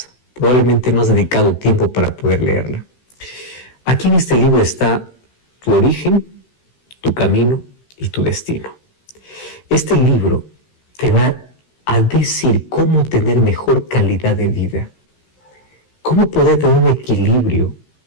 Probablemente no has dedicado tiempo para poder leerla. Aquí en este libro está tu origen, tu camino y tu destino. Este libro te va a decir cómo tener mejor calidad de vida, cómo poder tener un equilibrio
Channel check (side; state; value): right; late; 16 ms